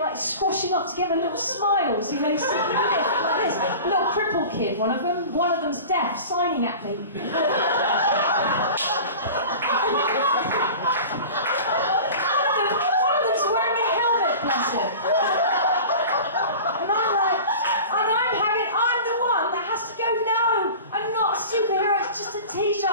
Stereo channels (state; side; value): inverted; both; correlation -0.37